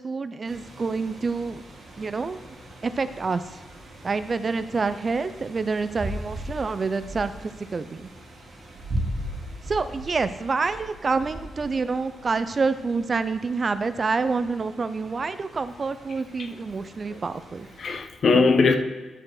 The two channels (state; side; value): normal; both; correlation 0.86